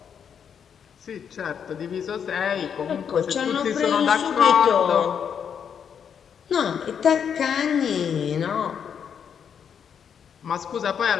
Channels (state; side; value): quieter; right; 7.6 dB